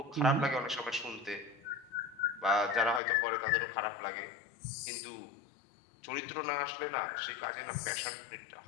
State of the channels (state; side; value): drops out; right; at 3.0 s